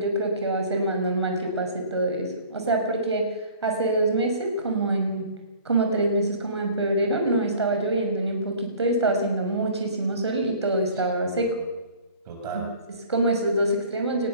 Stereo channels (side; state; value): both; inverted; correlation -0.48